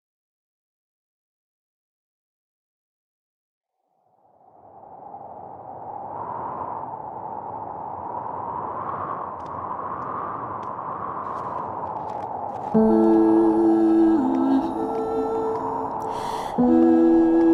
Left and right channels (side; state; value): both; identical; correlation 1.00